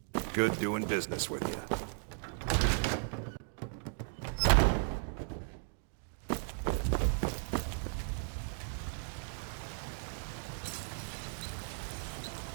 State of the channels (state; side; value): silent; left; 54 dB below the other